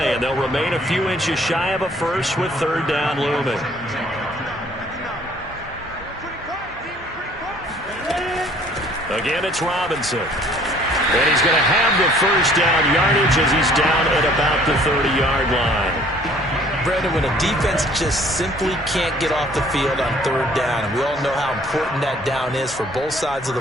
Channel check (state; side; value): normal; both; correlation 0.57